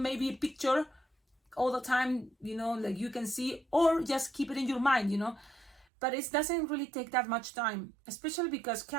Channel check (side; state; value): left; drops out; at 5.9 s